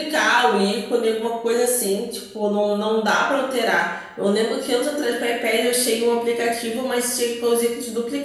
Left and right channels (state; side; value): identical; both; correlation 1.00